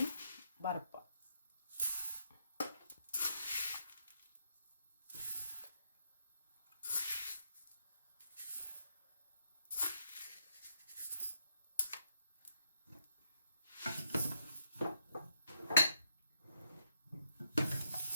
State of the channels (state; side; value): inverted; both; correlation -0.77